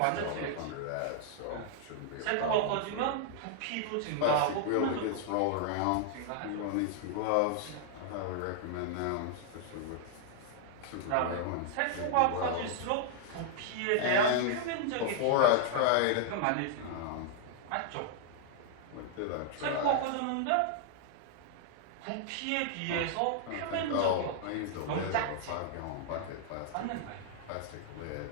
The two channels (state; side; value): different; both; correlation -0.01